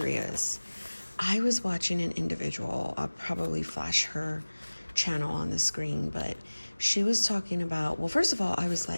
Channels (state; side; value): inverted; both; correlation -1.00